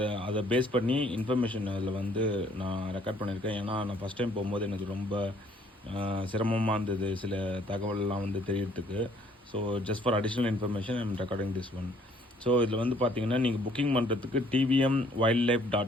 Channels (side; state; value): both; normal; correlation 0.61